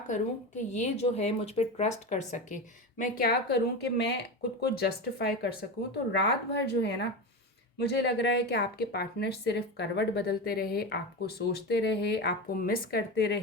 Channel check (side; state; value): both; normal; correlation 0.21